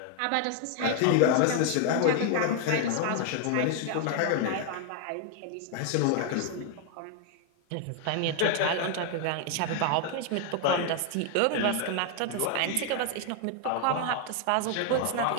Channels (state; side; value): different; both; correlation 0.00